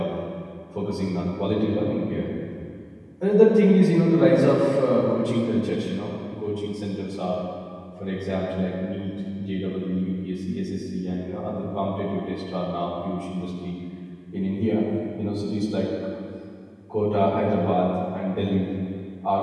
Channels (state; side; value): identical; both; correlation 1.00